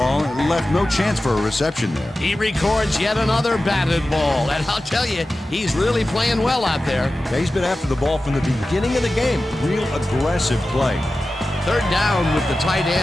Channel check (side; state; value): both; normal; correlation 0.94